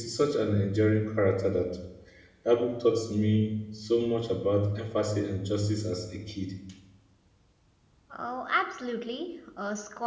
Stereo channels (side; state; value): both; identical; correlation 1.00